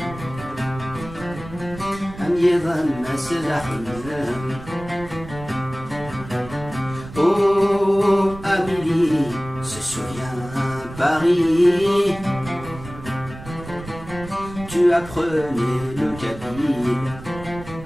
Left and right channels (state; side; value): noise; right; rumble, 14 dB below the sound